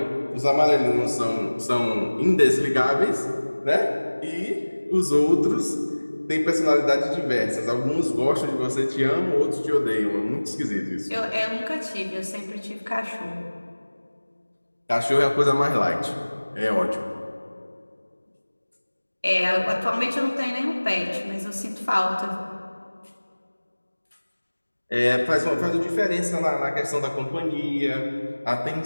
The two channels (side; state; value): both; inverted; correlation -1.00